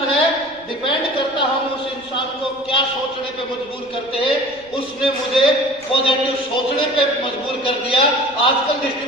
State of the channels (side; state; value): right; noise; rumble, 27 dB below the sound